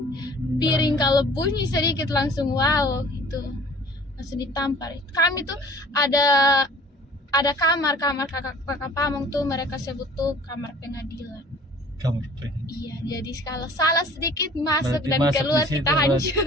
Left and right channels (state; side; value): normal; both; correlation 0.49